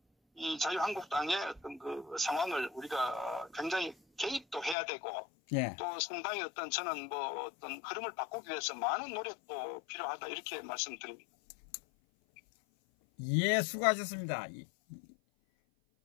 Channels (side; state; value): right; drops out; at 4.8 s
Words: 이 자유한국당의 어떤 그 상황을 우리가 굉장히 개입도 해야 되고 예. 또 상당히 어떤 저는 뭐 어떤 흐름을 바꾸기 위해서 많은 노력도 필요하다 이렇게 말씀드립니다. 예, 수고하셨습니다.